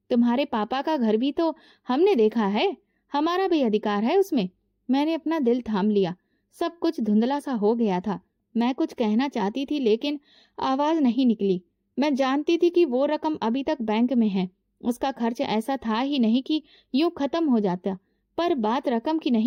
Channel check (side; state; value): both; identical; correlation 1.00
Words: तुम्हारे पापा का घर भी तो हमने देखा है। हमारा भी अधिकार है उसमें। मैंने अपना दिल थाम लिया। सब कुछ धुंधला सा हो गया था। मैं कुछ कहना चाहती थी, लेकिन आवाज नहीं निकली। मैं जानती थी कि वो रकम अभी तक बैंक में है। उसका खर्च ऐसा था ही नहीं कि यूं खत्म हो जाता। पर बात रकम की